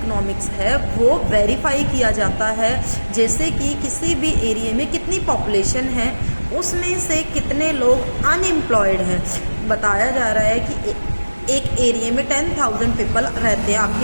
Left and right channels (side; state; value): both; inverted; correlation -1.00